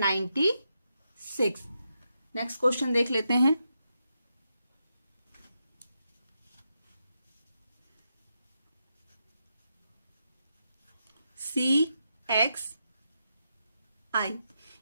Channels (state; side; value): inverted; both; correlation -0.84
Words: नेक्स्ट क्वेश्चन देख लेते हैं CXI।